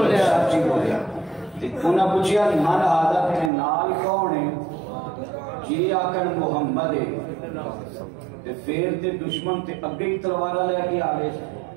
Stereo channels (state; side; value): drops out; left; at 3.5 s